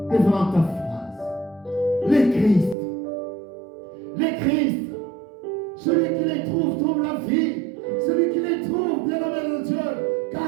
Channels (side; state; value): left; drops out; at 2.8 s